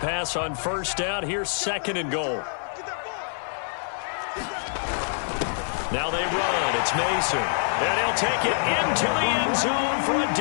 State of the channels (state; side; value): silent; right; 60 dB below the other